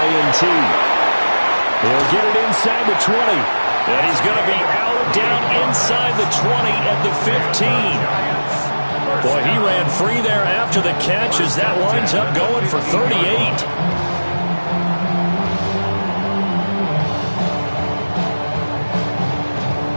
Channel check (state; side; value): inverted; both; correlation -1.00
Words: They'll get it inside the 20. And he's going to be out down inside the 20 at the 15. Boy, he ran free there after the catch as that winds up going for 38.